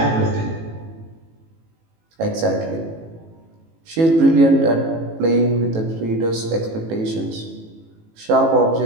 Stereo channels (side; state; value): left; late; 18 ms